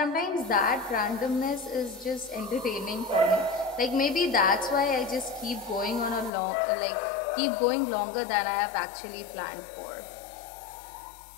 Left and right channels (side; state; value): right; drops out; at 6.3 s